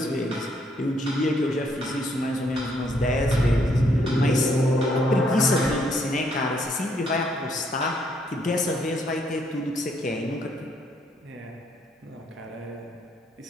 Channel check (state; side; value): normal; both; correlation 0.71